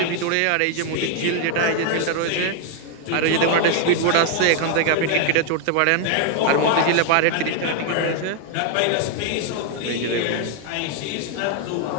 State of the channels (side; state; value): both; different; correlation 0.00